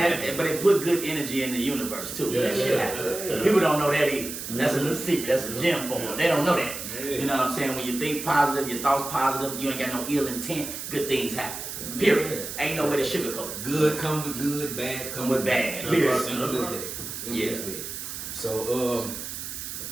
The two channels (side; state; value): right; noise; hiss, 7 dB below the sound